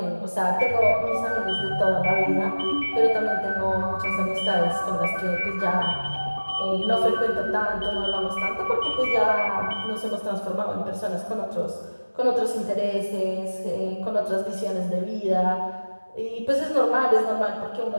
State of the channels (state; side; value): inverted; both; correlation -1.00